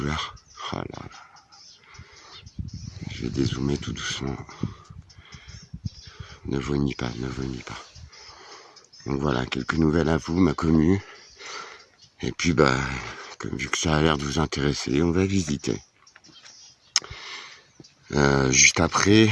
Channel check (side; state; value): both; identical; correlation 1.00